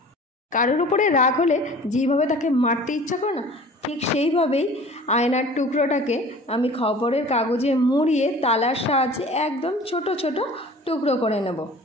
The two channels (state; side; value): normal; both; correlation 0.44